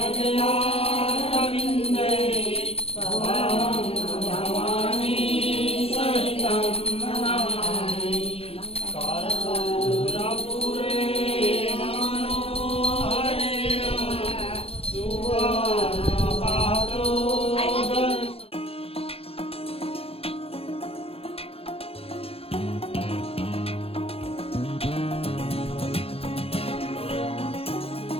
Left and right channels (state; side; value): late; right; 0.28 ms